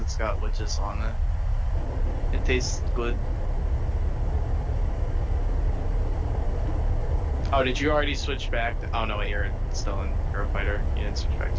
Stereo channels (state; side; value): identical; both; correlation 1.00